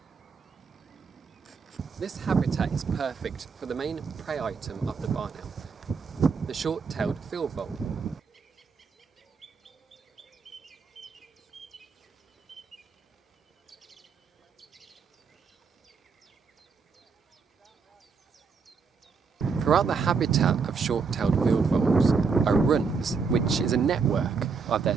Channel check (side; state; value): left; quieter; 5.3 dB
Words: This habitat is perfect for the main prey item of the barn owl, the short-tailed field vole. Throughout the habitat of short-tailed field voles are runs, which is a network of their